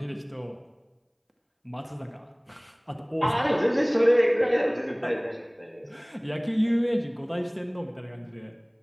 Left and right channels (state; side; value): identical; both; correlation 1.00